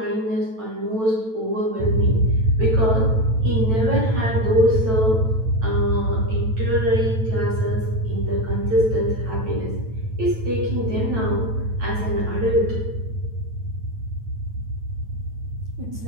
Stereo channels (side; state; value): left; late; 9.1 ms